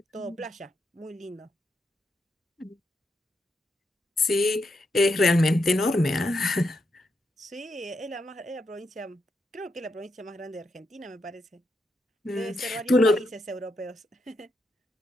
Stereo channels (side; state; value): both; normal; correlation 0.82